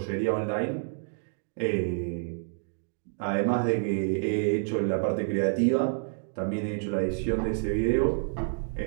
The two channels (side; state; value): left; silent; digital silence